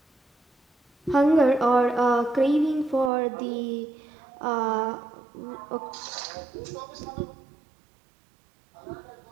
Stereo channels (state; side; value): drops out; left; at 3.1 s